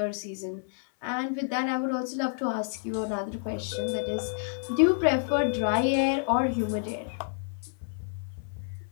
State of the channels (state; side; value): silent; right; 59 dB below the other